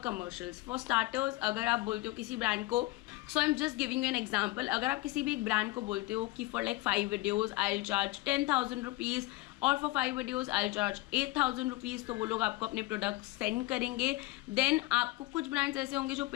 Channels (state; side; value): quieter; right; 19.9 dB